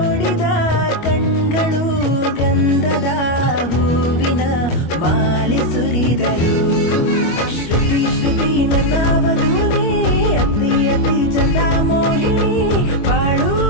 ಕಣ್ಗಳು ಗಂಧದ ಹೂವಿನ ಮಾಲೆ ಸುರಿದರು. ಶ್ರುತಿ ಶ್ರುತಿ ನನ್ನ ವಧುನೇ, ಅತಿ ಅತಿ ಚಂದ ಮೋಹಿನಿ, ಬಾಳು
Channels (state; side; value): late; right; 25 ms